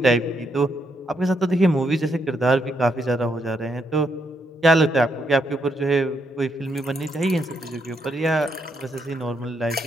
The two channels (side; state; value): both; normal; correlation 0.78